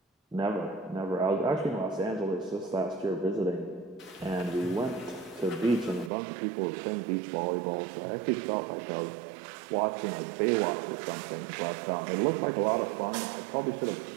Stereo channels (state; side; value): drops out; left; at 6.1 s